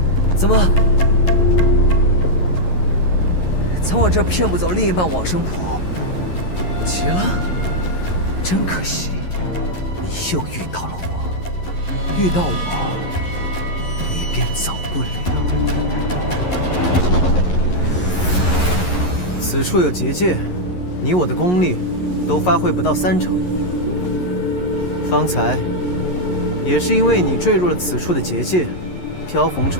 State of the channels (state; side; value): late; right; 11 ms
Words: 怎么？从我这儿骗不走另一半往生谱？急了？真可惜，你又遇到了我。遇到我，你便走不了。此处有结界，你我的功力都发挥不到30%。方才也是因为你坠入了此处的结界，飘红